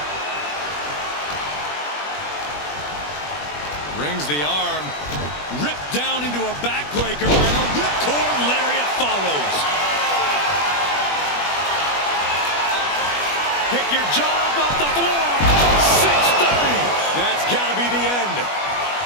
Rings the arm. Ripped down into a backbreaker, and a ripcord lariat follows. Pick your jaw off the floor. 630. That's got to be the end.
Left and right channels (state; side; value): late; right; 21 ms